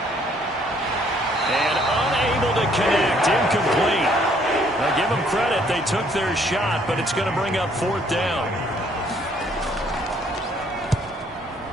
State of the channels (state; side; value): normal; both; correlation 0.64